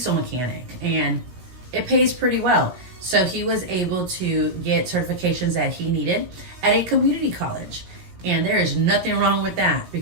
mechanic, and it pays pretty well. So he was able to get certifications that he needed at a community college. And there is nothing wrong with that,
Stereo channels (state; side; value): late; left; 17 ms